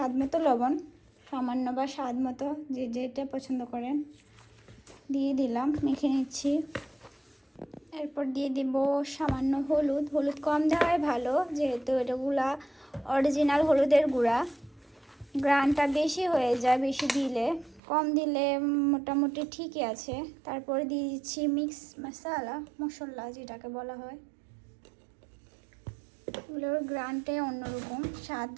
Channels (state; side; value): drops out; left; at 17.8 s